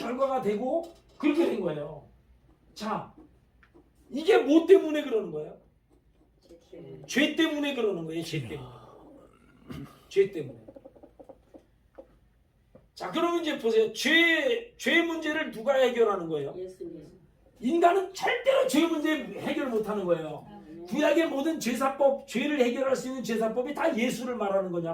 되고 그렇게 된 거예요. 자 이게 뭐 때문에 그러는 거예요? 죄 때문에 그러는 거예요. 죄 때문에. 죄 때문에. 자 그러면 이제 보세요. 죄 문제를 누가 해결하는 거예요? 예수님. 인간은 절대로 죄 문제 해결 못하는 거예요. 구약의 모든 제사법, 죄를 해결할 수 있는 제사법이 다 예수를 말하는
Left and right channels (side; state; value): both; identical; correlation 1.00